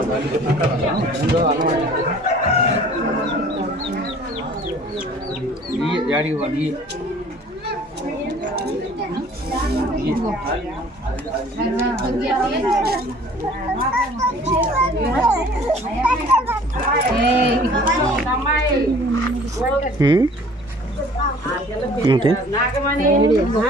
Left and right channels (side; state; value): both; normal; correlation 0.51